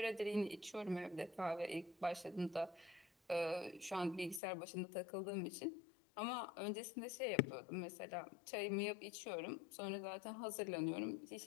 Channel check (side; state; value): right; drops out; at 4.4 s